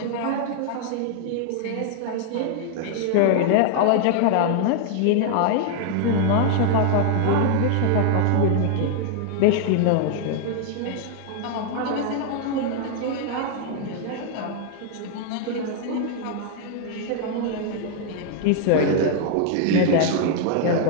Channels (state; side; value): different; both; correlation 0.00